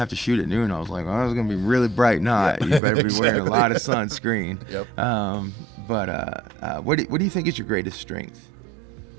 to shoot at noon. I was like, oh, it's gonna be really bright night. You better be wearing a lot of sunscreen. Yep. But what do you think is your greatest strength?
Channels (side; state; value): left; drops out; at 2.8 s